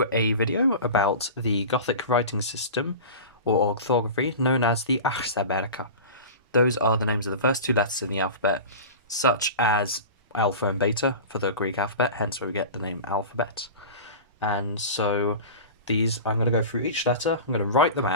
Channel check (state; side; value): inverted; both; correlation -0.33